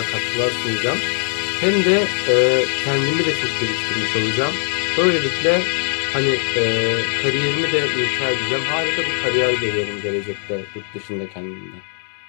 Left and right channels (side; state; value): right; silent; 63 dB below the other